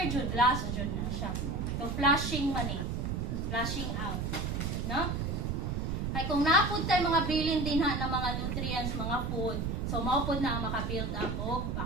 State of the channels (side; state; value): right; noise; rumble, 1 dB below the sound